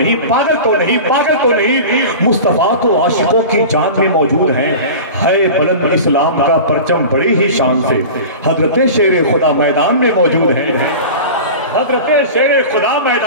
پاگل تو نہیں، پاگل تو نہیں، مصطفیٰ تو عاشقوں کی جان میں موجود ہیں۔ ہے بلند اسلام کا پرچم بڑی ہی شان سے، حضرت شیر خدا میدان میں موجود ہیں، حضرت شیر خدا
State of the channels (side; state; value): both; inverted; correlation -0.34